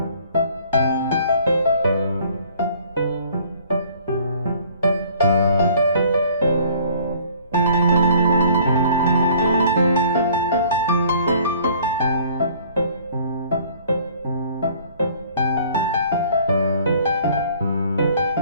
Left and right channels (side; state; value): both; inverted; correlation -0.54